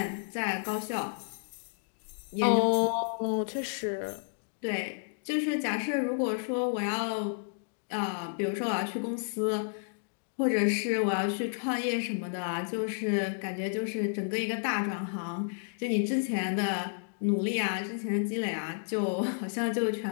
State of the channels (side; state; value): right; silent; digital silence